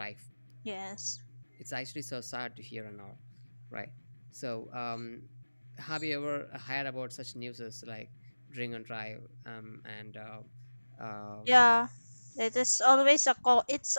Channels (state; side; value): inverted; both; correlation -1.00